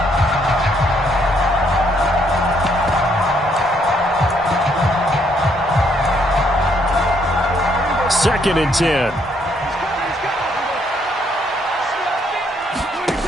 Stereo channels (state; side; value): normal; both; correlation 0.70